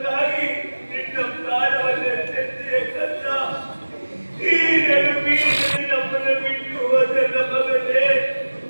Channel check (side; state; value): both; inverted; correlation -1.00